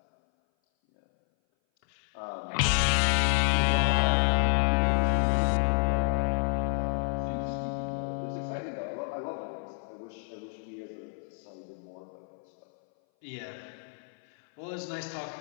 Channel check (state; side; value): silent; right; 58 dB below the other